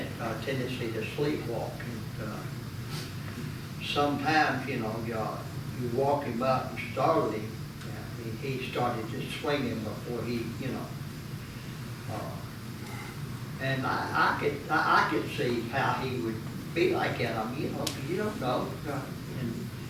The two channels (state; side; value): identical; both; correlation 1.00